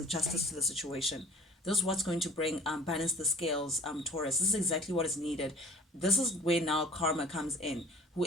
justice to the situation. This is what's going to bring balance the scales, Taurus. This is exactly what is needed. This is where now karma comes in.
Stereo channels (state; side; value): normal; both; correlation 0.47